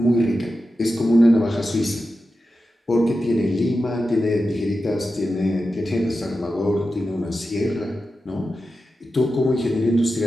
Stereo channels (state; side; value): normal; both; correlation 0.91